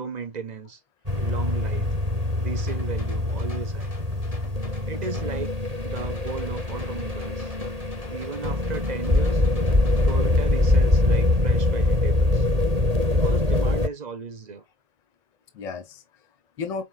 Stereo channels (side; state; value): left; late; 1.8 ms